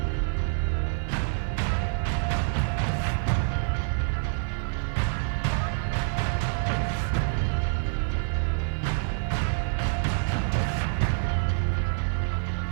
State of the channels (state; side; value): silent; left; 58 dB below the other